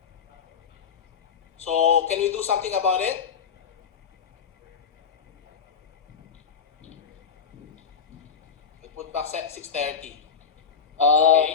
So can we do something about it? We'll put back 630. Okay.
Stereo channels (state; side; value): quieter; right; 6.5 dB